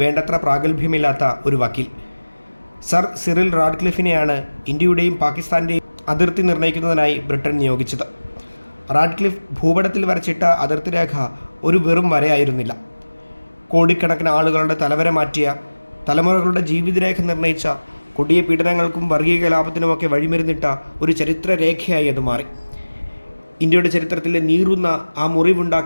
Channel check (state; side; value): inverted; both; correlation -1.00